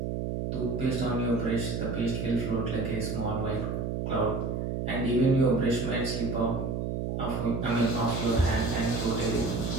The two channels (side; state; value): right; noise; hum, 2 dB below the sound